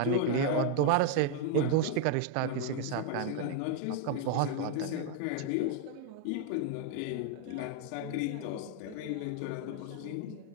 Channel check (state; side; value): different; both; correlation 0.00